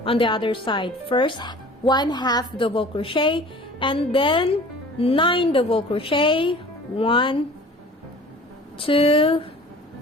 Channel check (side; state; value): both; normal; correlation 0.45